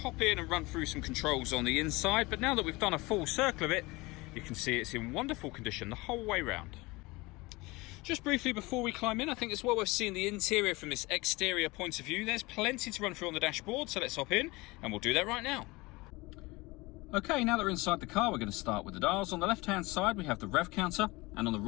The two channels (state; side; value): quieter; right; 22.9 dB